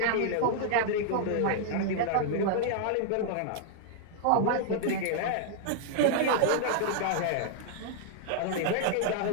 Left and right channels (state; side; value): different; both; correlation -0.01